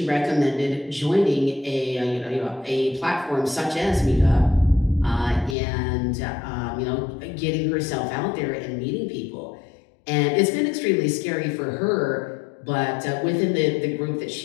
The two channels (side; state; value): right; drops out; at 5.6 s